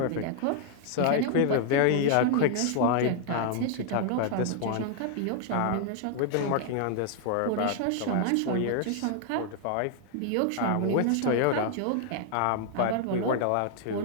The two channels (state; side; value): different; both; correlation 0.00